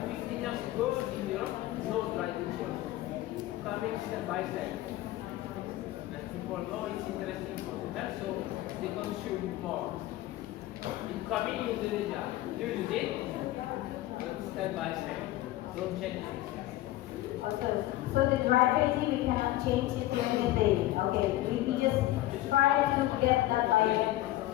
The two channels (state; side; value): quieter; right; 15.8 dB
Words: years ago in Europe, no dried veggie also. Coming step by step. And people know it's interesting for them, so they consume more. It's coming in Indonesia. You use it, but step by step. Don't change it. Okay. So the dried veggie we cannot change it to anything. Okay. We just try to get that by.